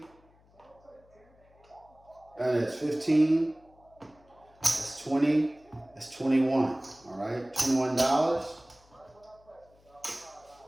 And that's 15. That's 20. That's 21. All right, $21.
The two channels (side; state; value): left; noise; hum, 30 dB below the sound